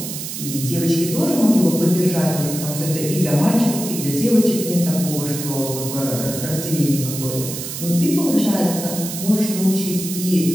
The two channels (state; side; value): noise; right; hiss, 7 dB below the sound